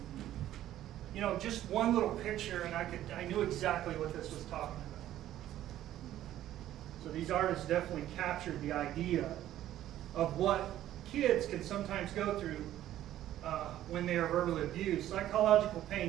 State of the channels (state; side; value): quieter; left; 12.9 dB